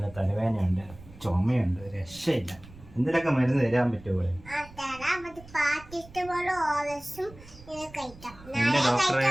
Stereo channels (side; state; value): right; noise; rumble, 20 dB below the sound